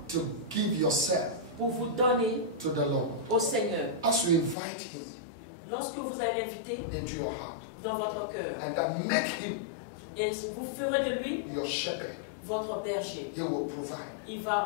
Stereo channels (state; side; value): drops out; right; at 4.5 s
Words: to give yourself pour vous donner to the Lord. au Seigneur. As you invite Him Lorsque vous allez l'inviter into your heart, dans votre cœur and then make Him et vous ferez de lui your shepherd, votre berger, He will provide. il